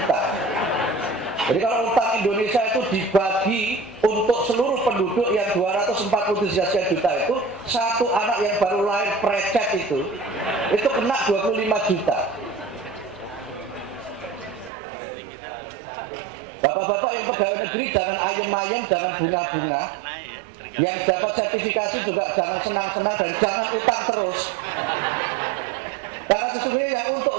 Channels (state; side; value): drops out; left; at 14.7 s